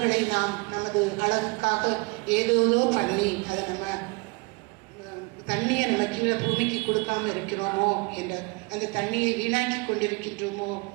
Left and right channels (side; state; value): left; quieter; 28.0 dB